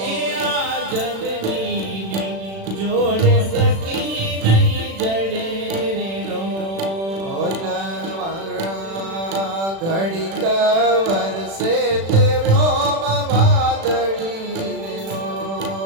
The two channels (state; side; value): late; left; 36 ms